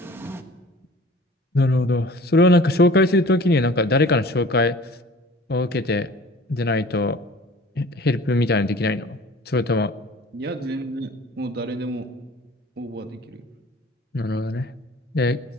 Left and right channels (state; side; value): normal; both; correlation 0.46